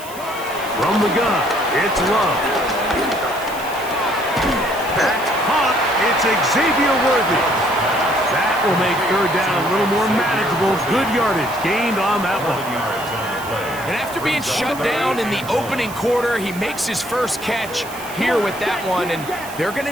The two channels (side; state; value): right; noise; hiss, 16 dB below the sound